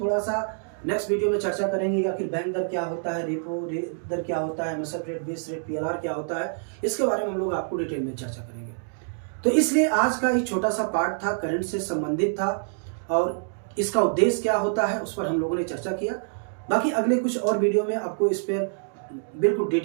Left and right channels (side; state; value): left; silent; digital silence